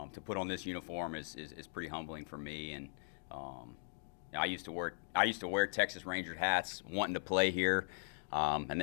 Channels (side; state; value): right; silent; digital silence